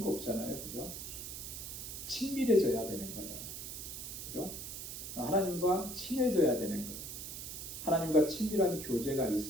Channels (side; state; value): right; noise; hiss, 8 dB below the sound